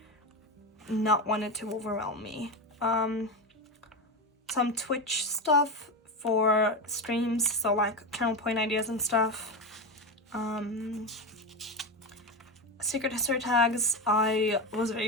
not wanted to overwhelm me. Some Twitch stuff for streams, so like channel point ideas and stuff. Secret history tags. I was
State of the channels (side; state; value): both; normal; correlation 0.17